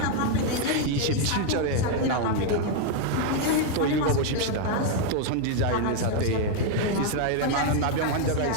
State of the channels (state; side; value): different; both; correlation 0.00